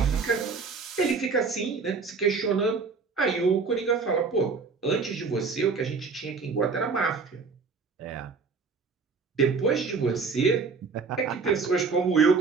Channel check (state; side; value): quieter; left; 4.8 dB